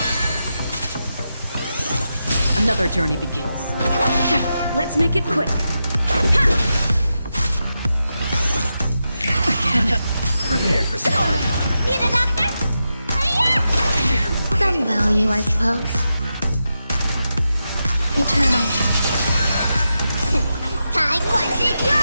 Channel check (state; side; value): inverted; both; correlation -0.88